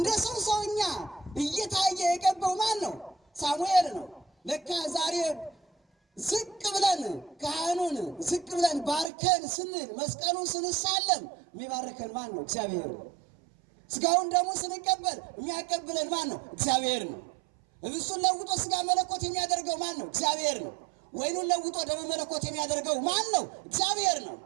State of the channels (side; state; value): left; drops out; at 9.1 s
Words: ሰውኛ እየታየ የቀባው ማን ነው? ሳሙኤል ነው። ለካ ዛሬ ዝቅ ብለን ካህኑን ዝቅ ብለን ባርከን ስንል መስቀሉን ስንሳለም የሚባርከን ማን ነው? እግዚአብሔር ነው። ስጋውን ደግሞ ስንቀበል የሚያቀብለን ማን ነው? እግዚአብሔር ነው። እብሱን ለውጦ ስጋ መለኮት የሚያደርገው ማን ነው? እግዚአብሔር ነው። ወይኑን ለውጦ ደሙ መለኮት የሚያደርገው ማን ነው? እግዚአብሔር ነው።